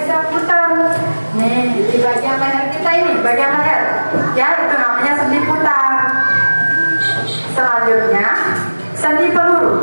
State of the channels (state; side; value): inverted; both; correlation -1.00